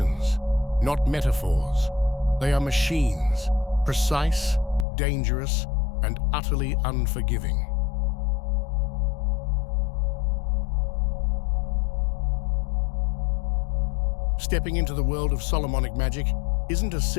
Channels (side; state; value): right; drops out; at 4.9 s